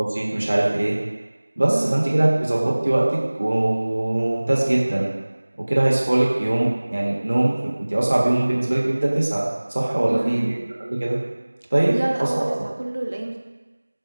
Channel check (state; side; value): inverted; both; correlation -1.00